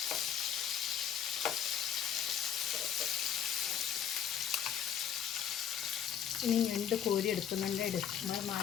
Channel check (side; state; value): right; quieter; 8.9 dB